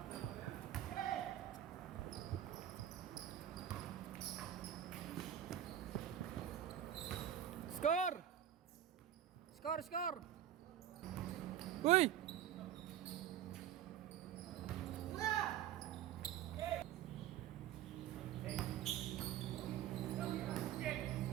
Score! Score, score! Uy!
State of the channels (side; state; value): left; quieter; 11.0 dB